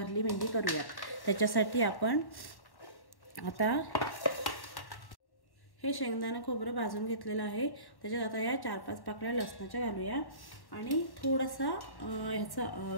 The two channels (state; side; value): late; right; 1.1 ms